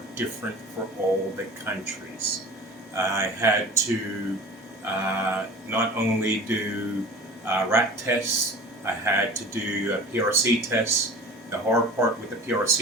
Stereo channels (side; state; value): both; normal; correlation 0.39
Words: different for all the countries. I had to not only do rat tests, I had to do PRC tests. The hard part with the